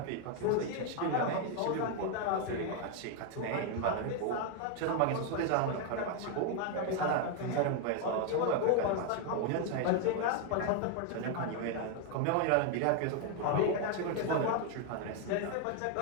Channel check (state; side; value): different; both; correlation 0.01